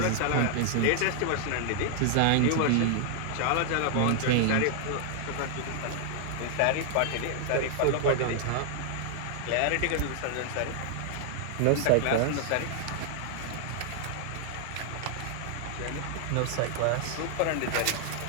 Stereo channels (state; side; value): different; both; correlation 0.00